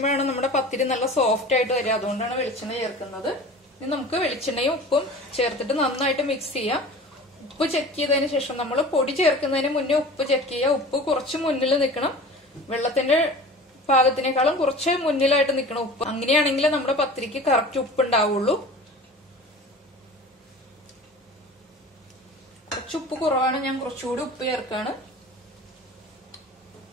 നമ്മുടെ പത്തിരി നല്ല സോഫ്റ്റ് ആയിട്ട് വരിക. അതുകൊണ്ടാണ് വെളിച്ചെണ്ണ ചേർക്കുന്നത്. ഇനി നമുക്ക് വെളിച്ചെണ്ണയും ഉപ്പും ചേർത്തിട്ട് നന്നായിട്ട് മിക്സ് ചെയ്യാം. ഉപ്പ് ചെക്ക് ചെയ്തതിന് ശേഷം നമ്മൾ പൊടി ചേർക്കുന്നതിന് മുന്നേ ഉപ്പ് ചെക്ക് ചെയ്യുക. ഉപ്പ് കുറച്ച് മുന്നിൽ നിൽക്കണം, വെള്ളത്തിന്റെ പാകത്തിനേക്കാളും കുറച്ച് മുന്നിലായിട്ട് നിൽക്കണം ഉപ്പ്. അങ്ങനെയാണെങ്കിൽ നമ്മുടെ പത്തിരിക്ക് കറക്റ്റ് ഉപ്പ് ഉണ്ടാവുള്ളൂ. കുറച്ച് ഉപ്പ് കുറവാണ്, ഞാൻ കുറച്ചുകൂടി ഉപ്പ് ചേർക്കാണ്.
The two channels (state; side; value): normal; both; correlation 0.39